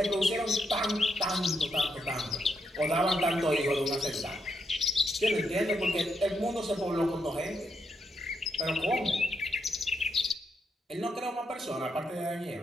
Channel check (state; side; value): normal; both; correlation 0.80